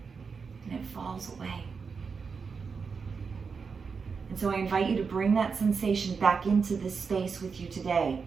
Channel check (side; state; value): left; quieter; 5.4 dB